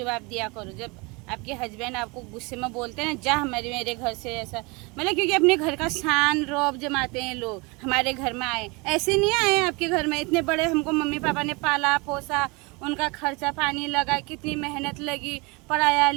दिया करो जब आपके हस्बैंड आपको गुस्से में बोलते हैं ना, जा मेरे घर से, ऐसा मतलब, क्योंकि अपने घर का शान रौब जमाते हैं लोग। हमारे घर में आए, ऐसे नहीं आए आपके घर में, इतने बड़े हमको मम्मी पापा ने पाला पोसा, उनका खर्चा पानी लगा, कितनी मेहनत लगी, पढ़ाया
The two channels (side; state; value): left; quieter; 27.6 dB